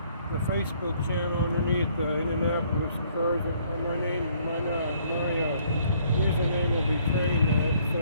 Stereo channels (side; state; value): both; inverted; correlation -0.63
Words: Facebook channel underneath the Indianapolis Cars. My username will be TrainNut. So